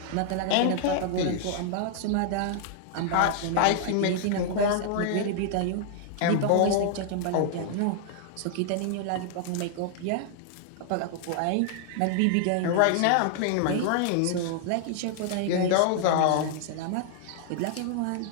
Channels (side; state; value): both; different; correlation -0.01